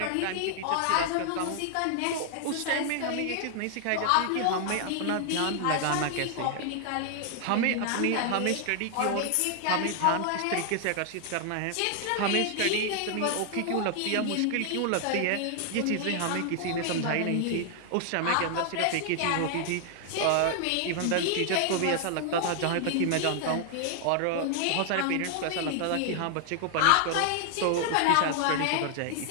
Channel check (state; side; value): different; both; correlation 0.00